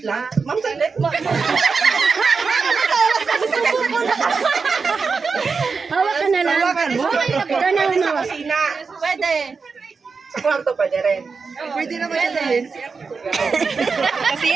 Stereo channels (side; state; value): left; quieter; 4.9 dB